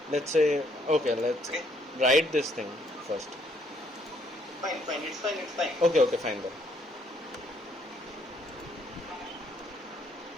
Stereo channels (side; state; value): both; normal; correlation 0.68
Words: Let's say let's write this thing first. Fine. It's fine. Okay, fine then.